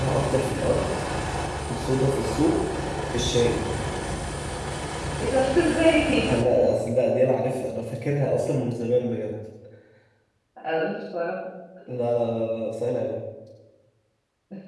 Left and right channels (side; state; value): both; identical; correlation 1.00